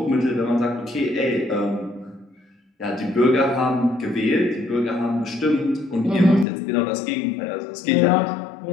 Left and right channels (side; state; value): right; drops out; at 6.5 s